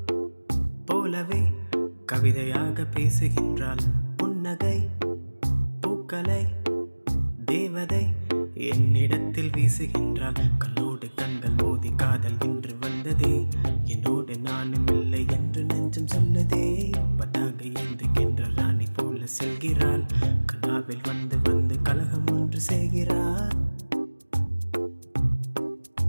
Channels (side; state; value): both; inverted; correlation -1.00